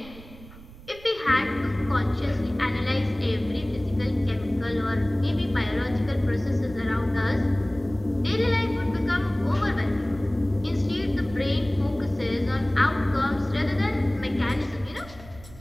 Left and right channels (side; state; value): right; noise; rumble, 19 dB below the sound